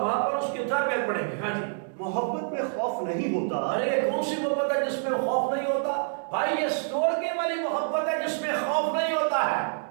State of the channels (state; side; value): silent; left; digital silence